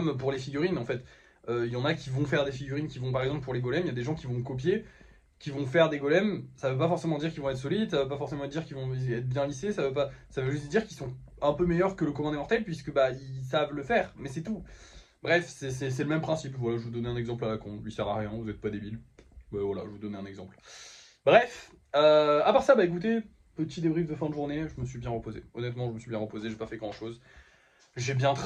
pour les figurines, en fait. Il y en a qui vont faire des figurines, qui vont, par exemple, pour les golems, il y a des gens qui vont copier, qui vont faire des golems, ça veut pas forcément dire qu'ils vont être solides, ça veut pas forcément dire qu'ils vont être bien lissés, ça veut juste dire qu'ils sont un peu meilleurs que le commun des mortels puisque ils savent le faire, mais c'est tout. Bref, c'est le même principe. Voilà, je vous donnais un exemple à la con, lui sert à rien, vous êtes pas débile. Voilà, je vous donnais un exemple. Bref, à part ça, écoutez, petit débrief de fin de journée, je me suis bien reposé. Honnêtement, je me suis bien reposé, j'ai pas fait grand chose. J'ai bien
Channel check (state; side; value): identical; both; correlation 1.00